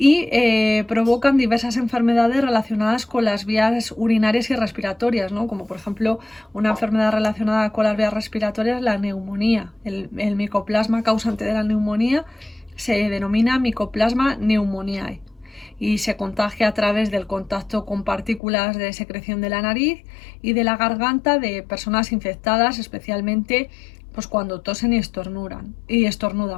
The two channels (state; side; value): drops out; right; at 18.4 s